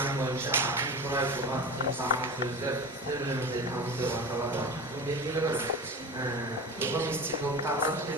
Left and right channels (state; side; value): normal; both; correlation 0.30